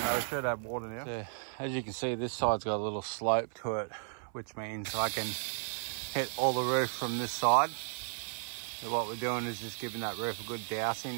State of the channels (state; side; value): silent; left; 55 dB below the other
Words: We should have water now. So, as you can see, this side's got a little slope to it, which means I can hit all the roof from this side. So what we're doing is just giving that roof a good